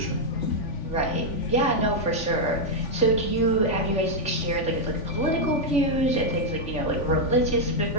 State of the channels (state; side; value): late; right; 3.5 ms